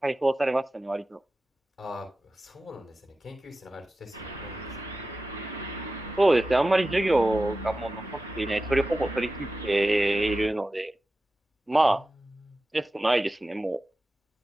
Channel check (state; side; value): normal; both; correlation 0.94